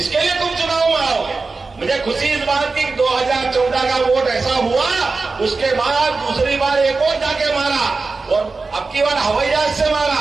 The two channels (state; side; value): quieter; left; 4.0 dB